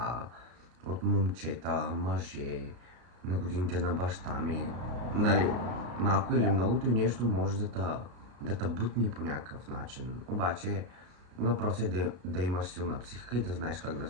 от момчета, мъже, на годините на баща ми. Нали, малко или многото нещо може да те бутни по някакъв начин. Обаче въпросът е да имаш силна психика и да знаеш как да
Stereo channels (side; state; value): left; late; 33 ms